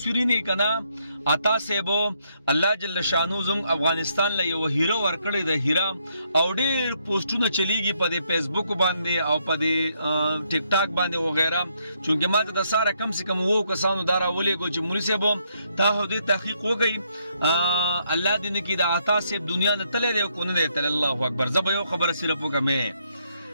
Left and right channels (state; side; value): inverted; both; correlation -0.74